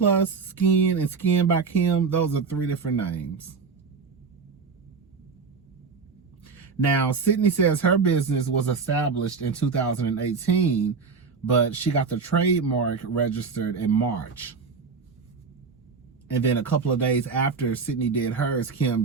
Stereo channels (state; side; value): quieter; left; 5.2 dB